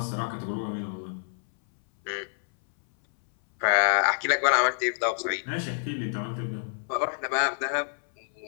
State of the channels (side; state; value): right; silent; 59 dB below the other